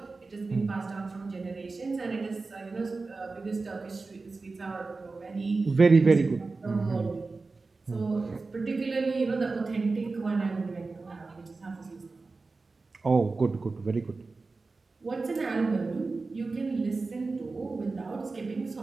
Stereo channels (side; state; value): left; quieter; 3.8 dB